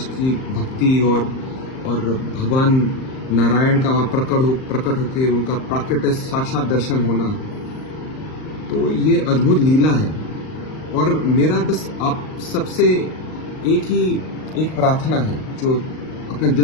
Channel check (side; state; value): right; late; 38 ms